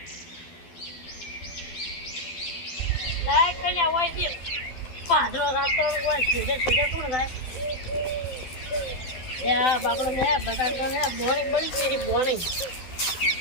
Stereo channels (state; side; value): late; right; 12 ms